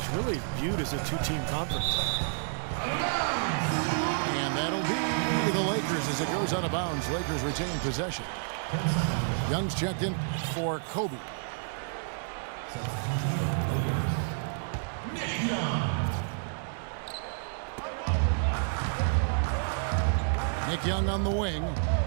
really viewed as a 2-team conference. And that'll be the Lakers as it goes out of bounds. Lakers retain possession. Young's checked in for Kobe. Nick Young on the wing.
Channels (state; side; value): silent; left; digital silence